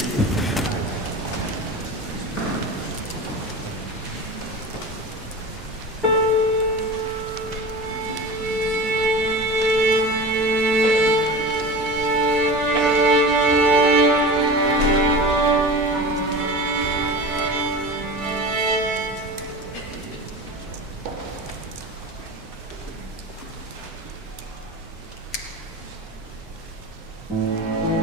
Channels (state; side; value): normal; both; correlation 0.31